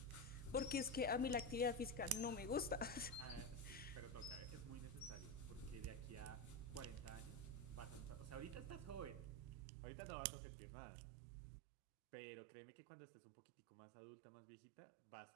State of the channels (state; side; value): drops out; left; at 9.7 s